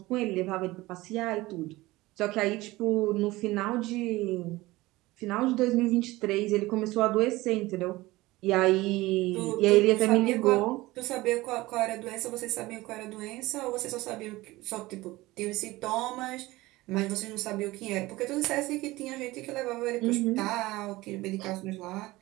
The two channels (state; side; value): quieter; left; 19.4 dB